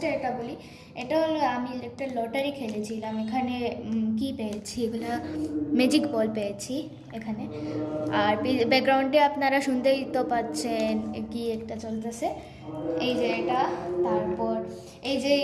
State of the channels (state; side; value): identical; both; correlation 1.00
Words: এটা বলি, এটা হলো আমি একটা লটারি খেলেছিলাম। এখানে কি পেয়েছি, এগুলো ম্যাজিক বল পেয়েছি এখানে। আর ব্যাকগ্রাউন্ডে আপনারা শুনতেই তো পাচ্ছেন কি একটা চলতেছে, এই যে এটা। তারপর এই যে